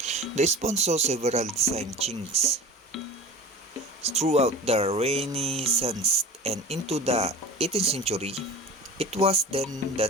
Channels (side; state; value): both; normal; correlation 0.36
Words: The spoon saw several design changes throughout the Renaissance and into the 18th century. It was then